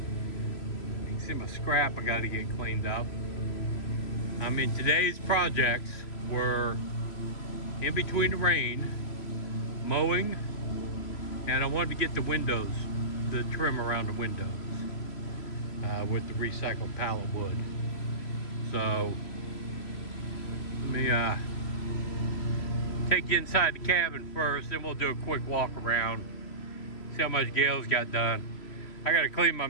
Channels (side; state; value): right; late; 3.0 ms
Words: can see my scrap I got to get cleaned up. I mean, today's projects were in between the rain, mowing, and I wanted to get the windows, the trim around the windows with the recycled pallet wood. So let me take you inside the cabin first, then we'll do a quick walk around, see how much Gail's got done. I got to clean my